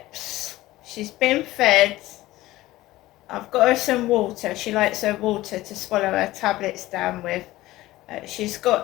she's been fed, I've got her some water, she likes her water to swallow her tablets down with, she's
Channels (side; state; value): right; quieter; 17.2 dB